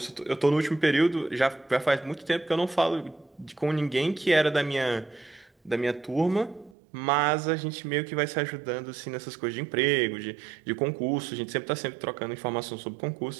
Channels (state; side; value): drops out; left; at 6.8 s